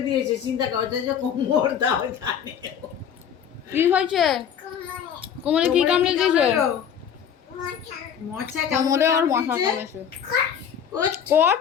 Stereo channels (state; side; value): quieter; right; 8.3 dB